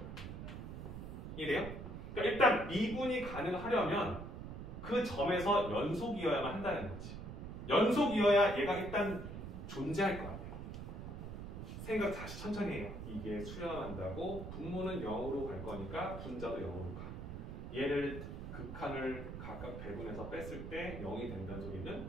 이해돼요? 그러니까 일단 미분이 가능하려면 그 점에서 연속이어야만 한다는 거지. 연속이어야 얘가 일단 존재할 것 같아요. 생각 다시 천천히 해요. 이게 수렴한다고 분모는 0으로 갈 거니까 분자도 0으로 가. 얘를 극한을 각각 배분해서 뺐을 때 0이 된다는 소리는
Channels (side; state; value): right; noise; rumble, 8 dB below the sound